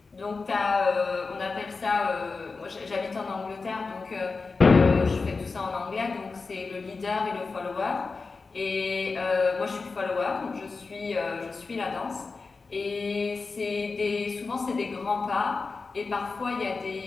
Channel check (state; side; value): quieter; right; 4.2 dB